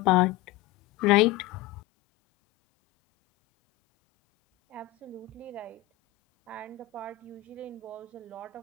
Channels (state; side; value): quieter; right; 14.6 dB